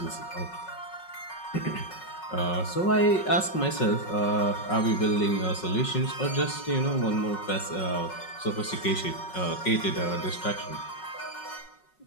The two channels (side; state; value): right; late; 5.4 ms